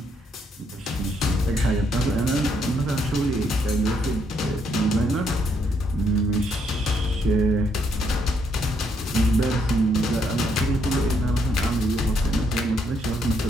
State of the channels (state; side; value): normal; both; correlation 0.73